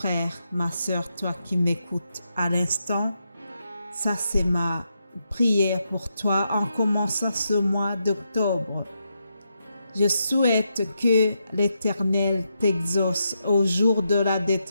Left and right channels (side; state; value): both; inverted; correlation -0.83